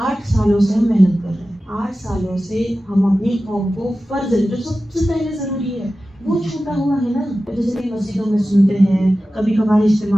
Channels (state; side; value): normal; both; correlation 0.95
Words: سالوں سے ہم محنت کر رہے ہیں. 8 سالوں سے ہم اپنی قوم کو فرض علم جو سب سے پہلے ضروری ہے وہ چھوٹا ہوا ہے نا. جیسے کہ مسجدوں میں سنتے ہیں، کبھی کبھار